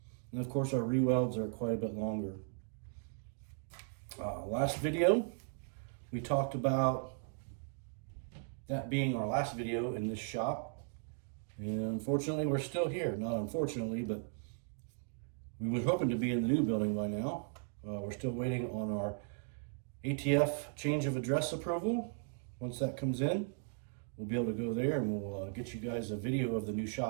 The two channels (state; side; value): silent; left; 53 dB below the other